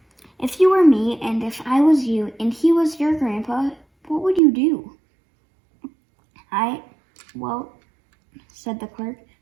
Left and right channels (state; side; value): drops out; left; at 4.4 s